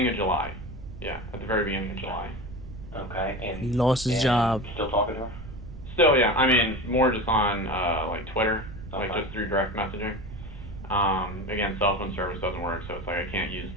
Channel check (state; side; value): noise; right; rumble, 12 dB below the sound